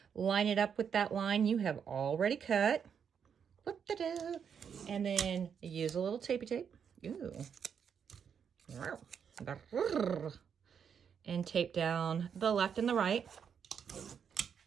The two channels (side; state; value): left; quieter; 7.4 dB